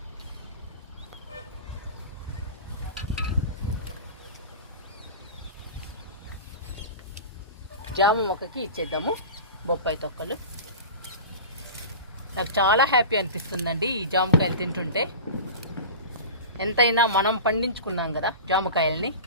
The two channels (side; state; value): both; inverted; correlation -0.32